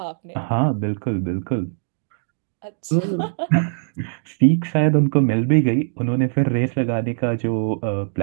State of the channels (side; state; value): left; silent; digital silence